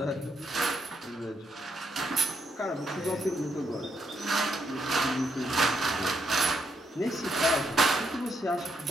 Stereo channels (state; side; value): normal; both; correlation 0.77